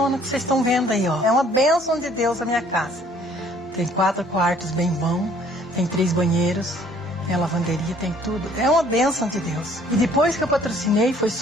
que vocês estão vendo aí, ó. É uma bênção de Deus a minha casa. Tem 4 quartos bem bons, tem 3 banheiros. Tem a lavanderia, tem tudo. É uma bênção de Deus. E depois que eu patrocinei, foi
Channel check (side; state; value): both; normal; correlation 0.58